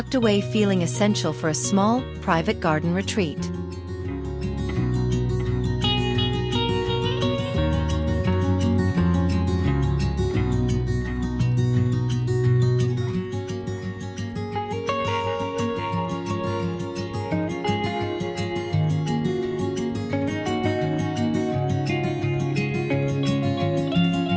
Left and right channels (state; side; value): identical; both; correlation 1.00